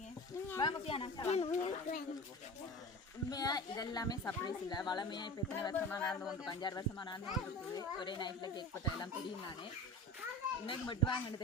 வாங்க பியானா உண்மையா இதெல்லாமே சர்ப்ரைஸ் இல்லை வளமையா இப்போ எத்தனை வருஷமா நடந்து வந்து 5-6 வருஷமா நடந்து வந்துருக்குது ஒரே நைட்டில் கேக் பட்ட எல்லாம் தெரியும் நானே இன்னைக்கு மட்டும் வாங்கன்னு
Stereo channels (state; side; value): normal; both; correlation 0.33